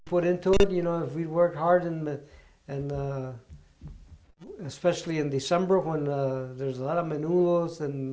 put into it. If we worked hard and especially in December when there's a lot of menudos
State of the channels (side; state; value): both; identical; correlation 1.00